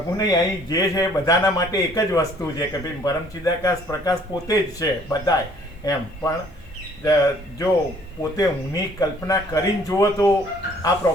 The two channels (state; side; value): normal; both; correlation 0.59